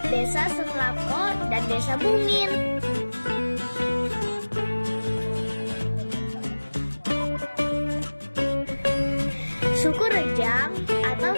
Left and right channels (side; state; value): both; inverted; correlation -1.00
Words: Desa Senglako dan Desa Bungin. Suku Rejang atau